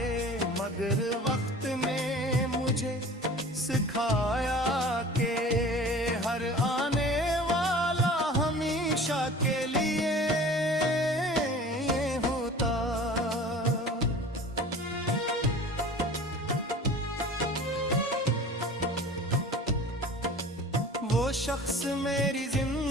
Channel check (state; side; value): normal; both; correlation 0.42